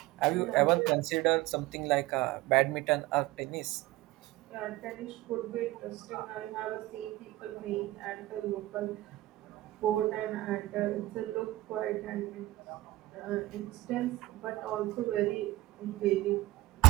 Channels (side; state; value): left; quieter; 17.9 dB